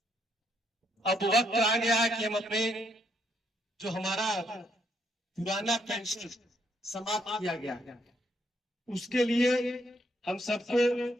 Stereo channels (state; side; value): normal; both; correlation 0.74